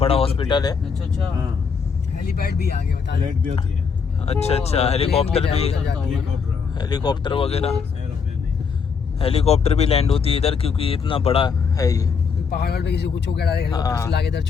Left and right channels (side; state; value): right; quieter; 5.8 dB